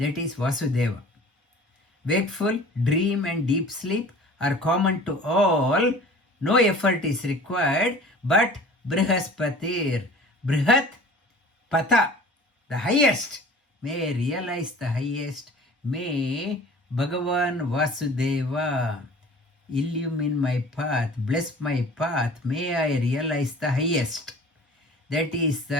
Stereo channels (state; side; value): normal; both; correlation 0.44